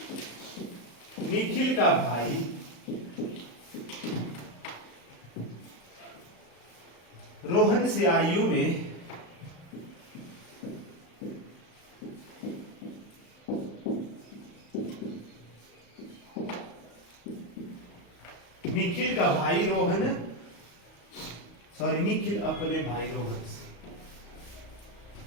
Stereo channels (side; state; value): right; late; 35 ms